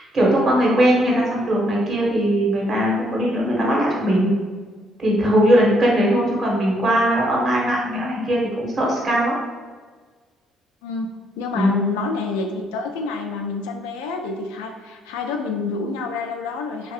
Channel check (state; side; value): normal; both; correlation 0.71